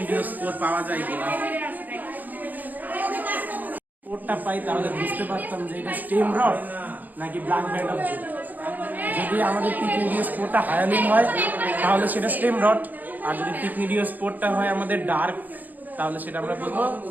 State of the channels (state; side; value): late; left; 0.083 ms